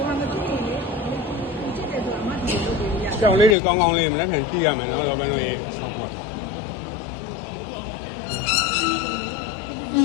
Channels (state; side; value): drops out; right; at 3.6 s